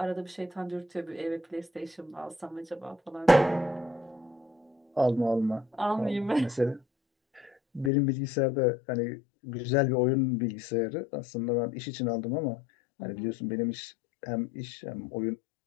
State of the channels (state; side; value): drops out; right; at 7.9 s